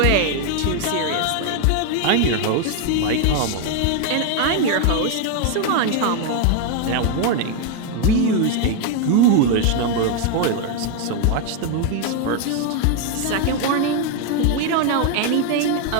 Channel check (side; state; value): both; different; correlation 0.01